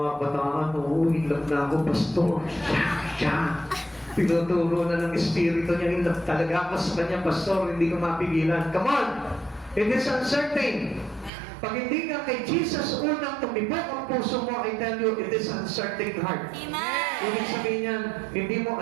bataan, ilag na ako, pastor. Siya. Tinuturo na ng espiritu niya, ilag talaga ako sa kanya, pastor, hindi ko mapigilan. Come on! It is uncertain. Pag hindi ka kay Jesus unang tumibok ang puso mo, I tell you, it is uncertain heart. Amen. Ibig sabihin yan, hindi mo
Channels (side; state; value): left; drops out; at 11.3 s